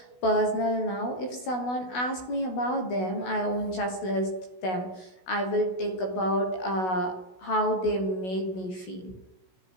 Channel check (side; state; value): right; late; 16 ms